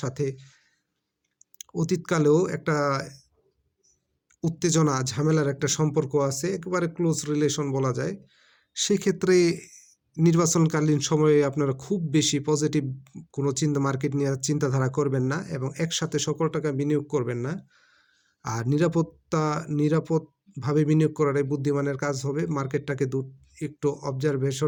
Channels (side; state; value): both; identical; correlation 1.00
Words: সাথে অতীতকালেও একটা উত্তেজনা ঝামেলার একটা সম্পর্ক আছে, একেবারে ক্লোজ রিলেশন বলা যায়। সেক্ষেত্রে নির্বাচনকালীন সময়ে আপনারা খুব বেশি পজিটিভ কোনো মার্কেট নিয়ে চিন্তাধারা করবেন না এবং একসাথে সকল টাকা বিনিয়োগ করবেন না। আর নিরাপদভাবে বিনিয়োগ করাটাই বুদ্ধিমানের কাজ হবে। মার্কেটটাকে একটু